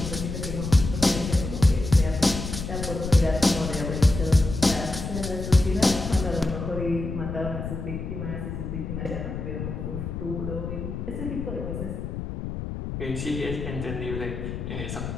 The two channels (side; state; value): left; noise; rumble, 6 dB below the sound